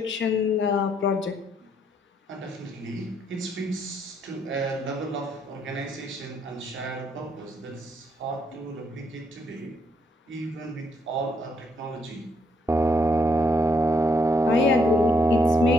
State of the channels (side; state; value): both; normal; correlation 0.73